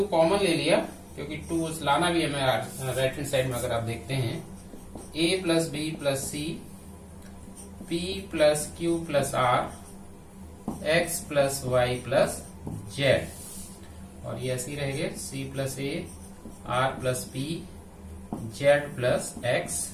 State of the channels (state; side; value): identical; both; correlation 1.00